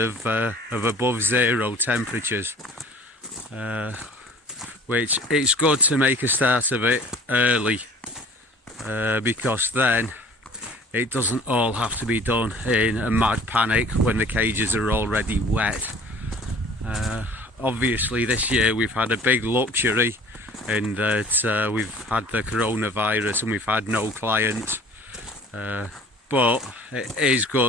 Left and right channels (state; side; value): normal; both; correlation 0.48